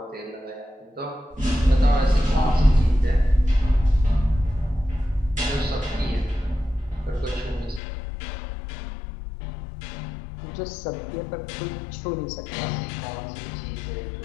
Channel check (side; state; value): right; drops out; at 7.8 s